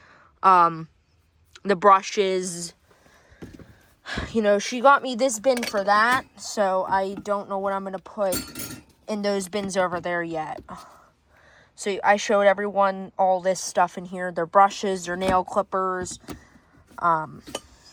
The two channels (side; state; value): both; identical; correlation 1.00